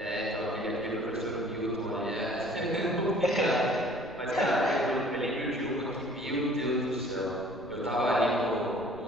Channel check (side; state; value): right; noise; rumble, 22 dB below the sound